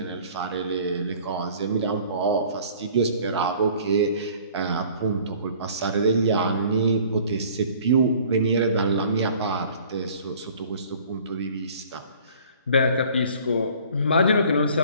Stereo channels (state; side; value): inverted; both; correlation -0.51